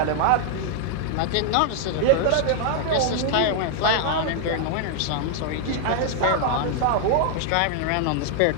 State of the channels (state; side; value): different; both; correlation 0.00